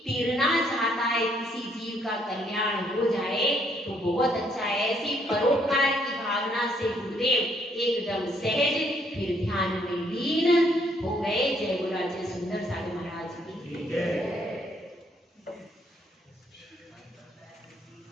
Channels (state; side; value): normal; both; correlation 0.69